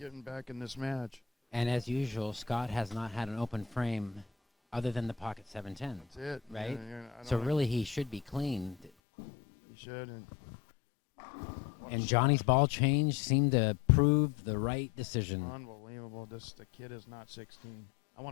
back in this match. And as usual, Scott has not had an open frame other than the pocket 710. That's it. Right? I So don't- really he should be clean. He should. And Johnny's ball change seemed to prove the right decision. Unbelievable. The kid is not 16. I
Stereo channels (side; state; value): right; drops out; at 8.9 s